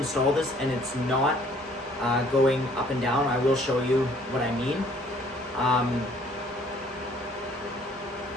this and it's not going up and down, I will show you what I mean.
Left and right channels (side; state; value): both; normal; correlation 0.59